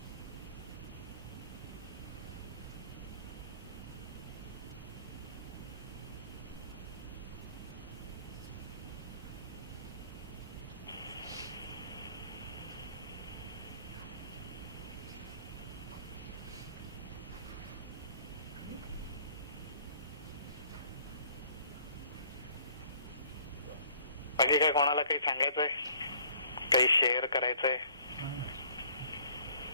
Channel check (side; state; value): both; inverted; correlation -0.56